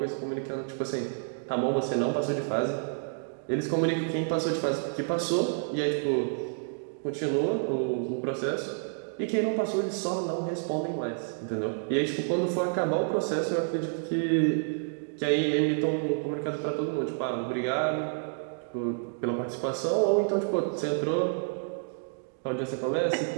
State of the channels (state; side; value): silent; left; digital silence